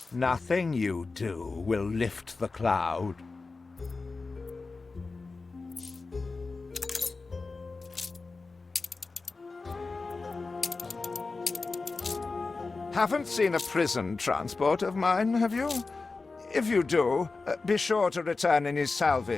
Nothing you do will lift the cloud. Haven't seen a prison transport of mine, have you? If you do, be sure to return any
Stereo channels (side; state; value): right; quieter; 3.9 dB